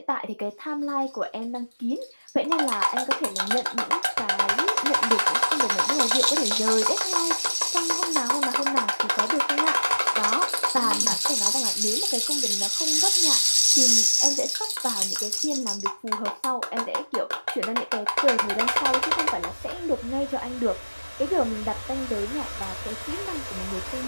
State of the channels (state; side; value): inverted; both; correlation -1.00